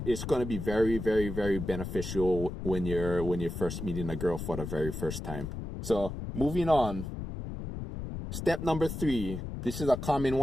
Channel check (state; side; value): noise; left; rumble, 6 dB below the sound